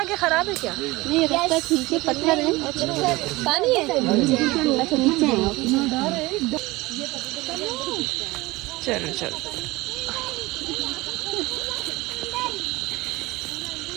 खराब है क्या? नहीं, रास्ता ठीक है, पत्थर है। पानी है। अच्छा नीचे है। चलो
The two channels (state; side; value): quieter; left; 21.1 dB